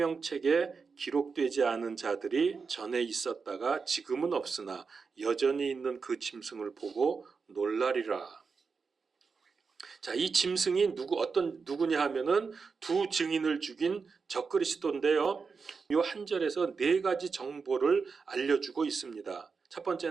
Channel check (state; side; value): quieter; left; 5.1 dB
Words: 기록되지 않은 자들이 전에 있었다가 지금은 없으나 여전히 있는 그 짐승을 보고 놀라리라. 자, 이 짐승이 누구냐 하면은 두 증인을 죽인 적그리스도인데요. 이 한 절에서 네 가지 정보를 알려주고 있습니다. 첫